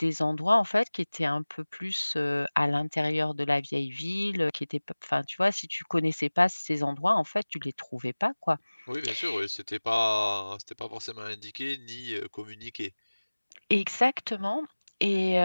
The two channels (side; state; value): both; inverted; correlation -1.00